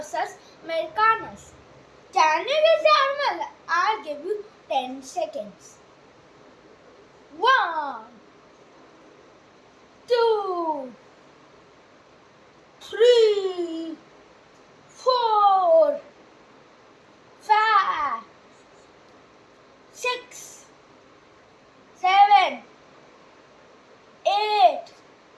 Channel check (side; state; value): both; identical; correlation 1.00